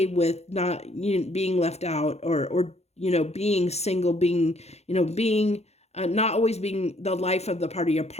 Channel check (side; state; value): right; late; 0.31 ms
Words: with not being left out, or being single, being, being not always being the life of the party, a